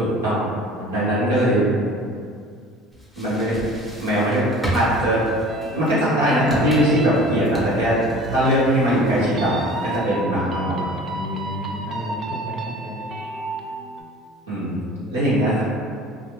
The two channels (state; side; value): normal; both; correlation 0.44